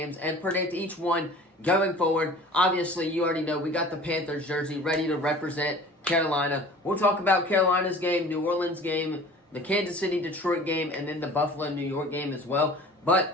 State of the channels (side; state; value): both; normal; correlation 0.44